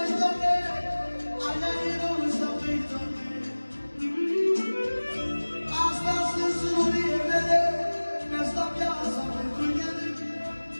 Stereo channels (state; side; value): inverted; both; correlation -1.00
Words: doamne, aia e Rosa mai doamne. Astea sunt surorile mele, mi-asta viața pentru ele.